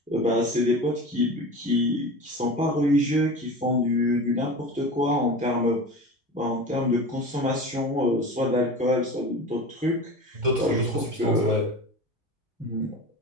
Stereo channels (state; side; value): normal; both; correlation 0.32